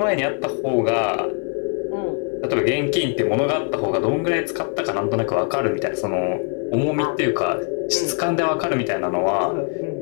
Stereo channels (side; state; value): right; quieter; 38.4 dB